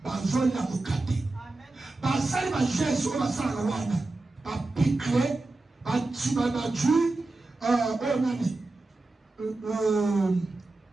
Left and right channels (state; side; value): quieter; left; 3.2 dB